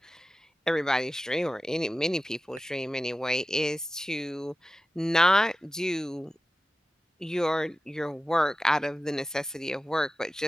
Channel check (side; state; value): both; normal; correlation 0.94